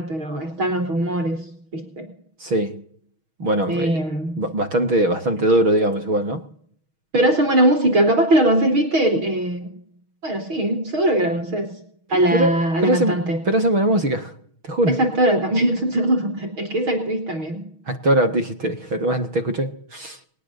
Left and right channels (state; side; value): late; left; 6.3 ms